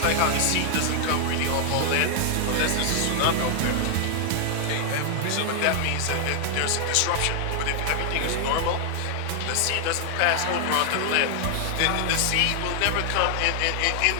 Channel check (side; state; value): both; different; correlation 0.00